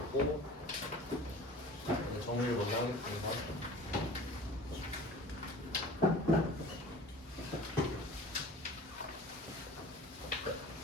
정리를 먼저 하겠습니다.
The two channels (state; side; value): normal; both; correlation 0.42